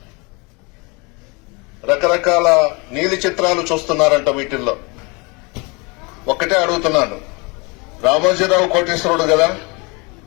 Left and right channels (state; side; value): quieter; right; 28.7 dB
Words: రకరకాల నీలి చిత్రాలు చూస్తున్నారంట. వీటిల్లో ఒక్కటే అడుగుతున్నాను, రామోజీరావు కోటేశ్వరుడు కదా,